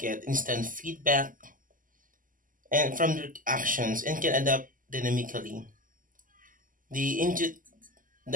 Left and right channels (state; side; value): late; left; 0.39 ms